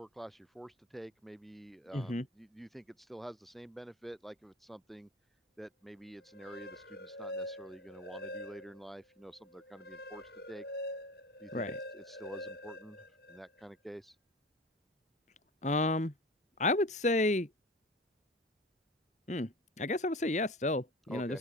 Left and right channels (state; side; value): normal; both; correlation 0.34